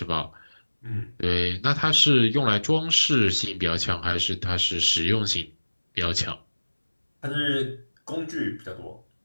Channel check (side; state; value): both; inverted; correlation -1.00